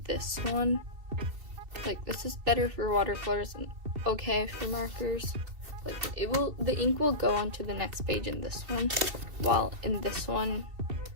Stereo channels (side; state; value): left; late; 2.7 ms